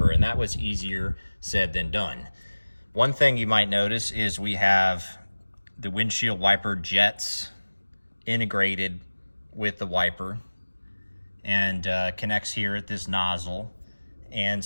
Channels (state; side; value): inverted; both; correlation -1.00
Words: and that was easier said than done. One thing you might notice is we have the windshield wiper jets integrated with the wiper, and connects here at this nozzle, and